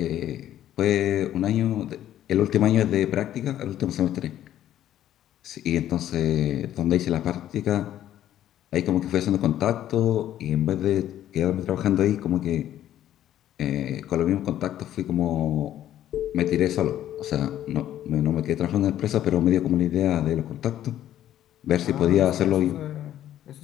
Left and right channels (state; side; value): quieter; right; 11.9 dB